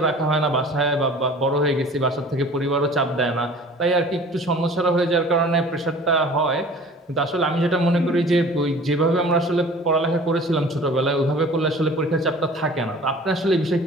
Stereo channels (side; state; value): both; normal; correlation 0.46